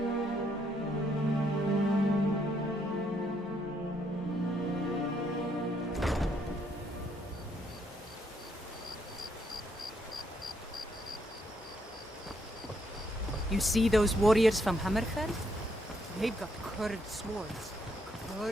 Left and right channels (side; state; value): both; normal; correlation 0.73